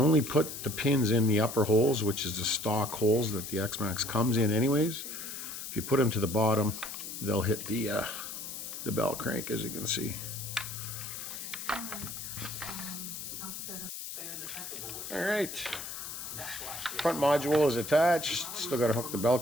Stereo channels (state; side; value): noise; left; hiss, 8 dB below the sound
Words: put the pins in the upper holes, which is the stock holes that the X-Maxx comes in anyways. If you put them to the bottom, they'll hit the bell crank, as you can see. All right, front module is attached. Still got to hook the bell